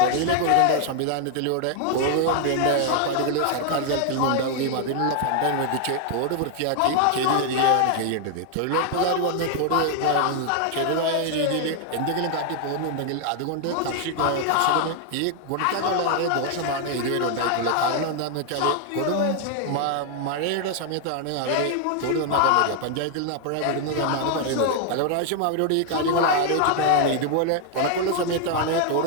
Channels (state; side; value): different; both; correlation 0.00